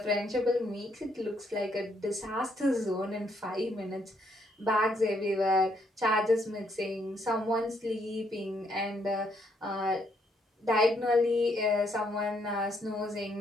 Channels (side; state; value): both; normal; correlation 0.72